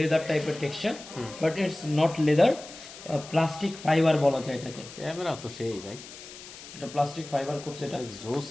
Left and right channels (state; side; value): noise; left; hiss, 15 dB below the sound